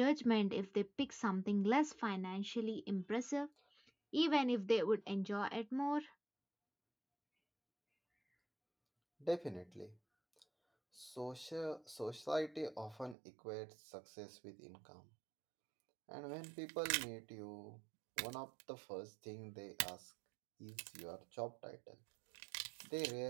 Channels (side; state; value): left; drops out; at 13.2 s